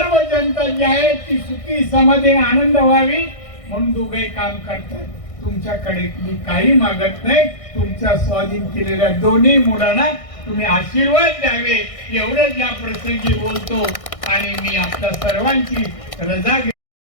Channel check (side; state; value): right; late; 1.6 ms